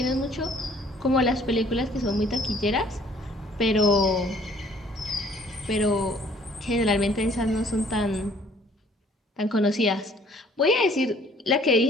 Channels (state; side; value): normal; both; correlation 0.58